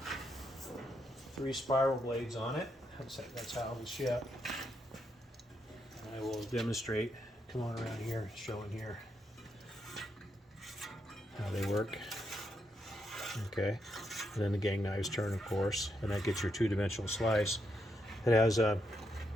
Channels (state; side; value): normal; both; correlation 0.80